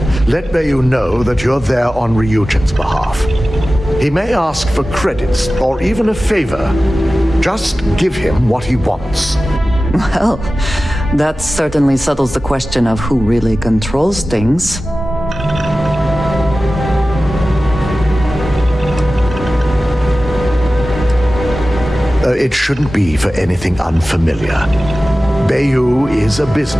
Let Bayou know that you're there on Ryujin's behalf. He may ask for credits or even a favor. Just give him what he wants. Well, that certainly settles the question of who really controls things. It shouldn't be for anything unfamiliar. Bayou is a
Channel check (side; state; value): both; normal; correlation 0.96